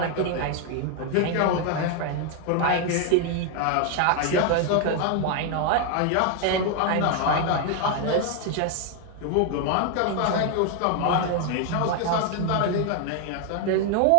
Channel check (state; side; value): different; both; correlation 0.01